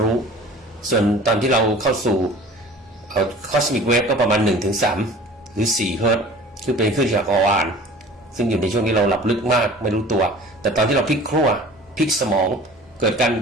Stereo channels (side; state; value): both; normal; correlation 0.44